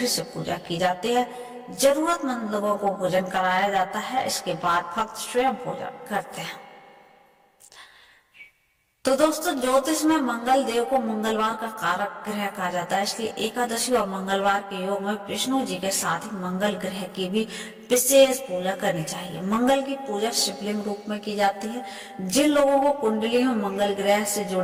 से पूजा की जाती है। जरूरतमंद लोगों को भोजन कराया जाता है। इसके बाद भक्त स्वयं भोजन करते हैं। तो दोस्तों ज्योतिष में मंगल देव को मंगलवार का कारक ग्रह कहा जाता है, इसलिए एकादशी और मंगलवार के योग में विष्णु जी के साथ ही मंगल ग्रह की भी विशेष पूजा करनी चाहिए। मंगल की पूजा शिवलिंग रूप में की जाती है। जिन लोगों को कुंडली में मंगल ग्रह से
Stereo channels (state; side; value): identical; both; correlation 1.00